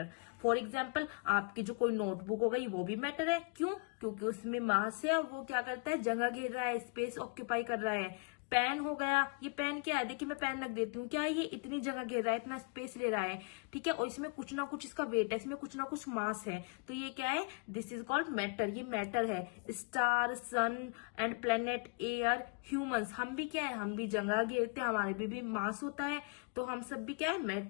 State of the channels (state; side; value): quieter; right; 35.1 dB